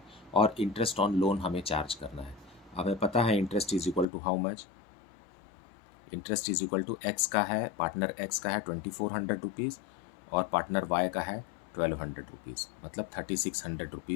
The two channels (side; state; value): right; drops out; at 4.0 s